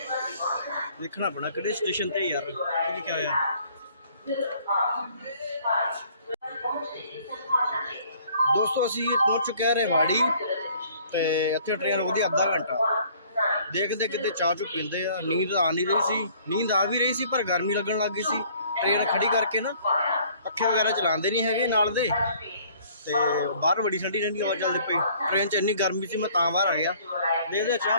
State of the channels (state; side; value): inverted; both; correlation -0.57